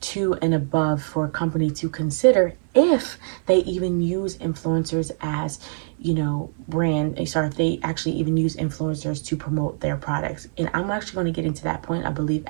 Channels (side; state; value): left; silent; digital silence